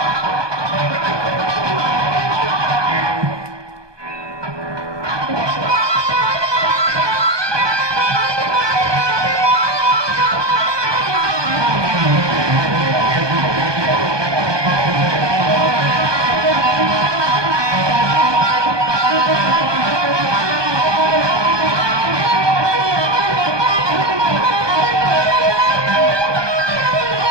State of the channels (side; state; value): left; late; 1.2 ms